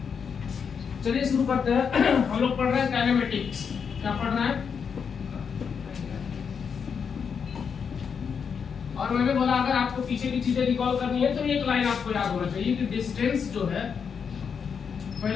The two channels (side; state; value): right; quieter; 6.5 dB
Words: चलिए शुरू करते हैं। हम लोग पढ़ रहे हैं काइनेमेटिक्स। क्या पढ़ रहे हैं? और मैंने बोला अगर आपको पीछे की चीजें रिकॉल करनी है तो एक लाइन आपको याद होना चाहिए कि डिस्टेंस जो है,